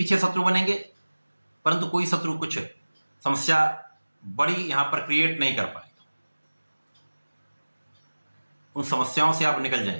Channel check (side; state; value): both; inverted; correlation -1.00